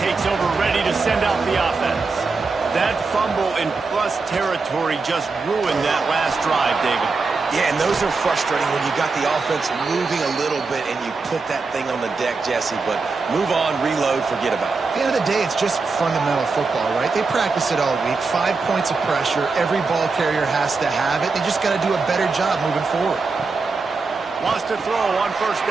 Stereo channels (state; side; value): quieter; left; 4.2 dB